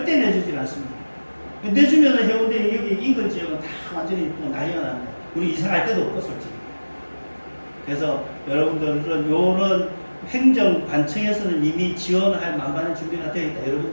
내주질 않습니다. 내주면은 해운대 여기 인근 지역은 다 완전히 또 난리가 납니다. 우리 이사 갈 데도 없고 솔직히. 그래서 여러분들은 요런 행정관청에서는 이미 지원할 만반의 준비가 되어 있다.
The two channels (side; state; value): both; inverted; correlation -1.00